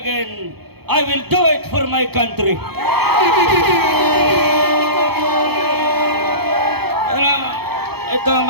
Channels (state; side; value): late; left; 0.96 ms